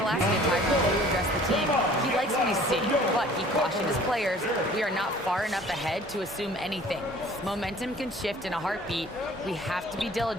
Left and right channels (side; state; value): both; normal; correlation 0.51